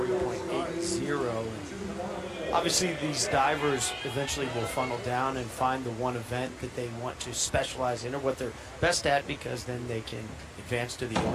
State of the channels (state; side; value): identical; both; correlation 1.00